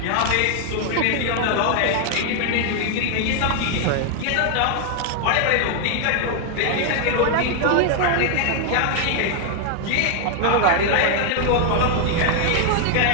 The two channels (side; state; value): both; different; correlation 0.00